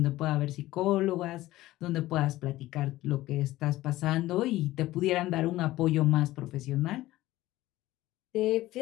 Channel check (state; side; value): quieter; right; 16.5 dB